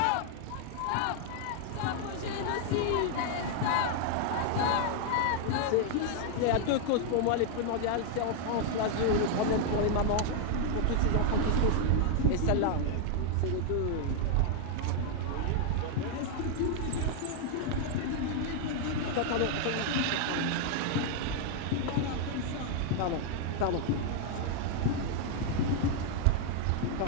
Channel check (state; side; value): different; both; correlation 0.00